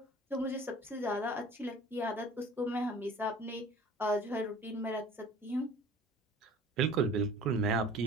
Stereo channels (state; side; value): normal; both; correlation 0.46